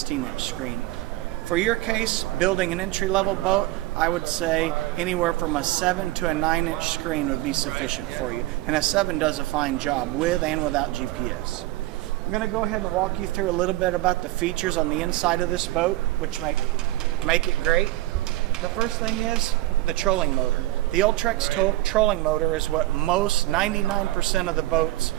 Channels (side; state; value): left; quieter; 17.8 dB